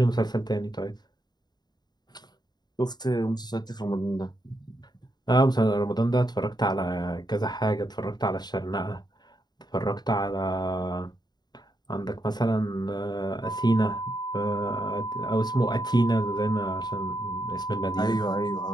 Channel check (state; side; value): late; right; 0.20 ms